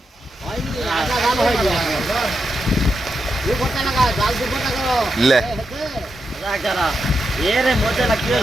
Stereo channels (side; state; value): both; normal; correlation 0.85